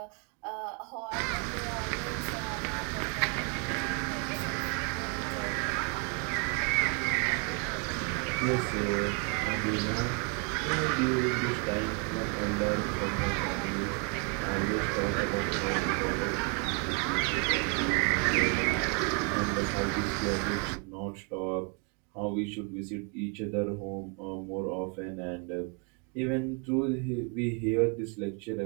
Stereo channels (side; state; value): left; quieter; 36.7 dB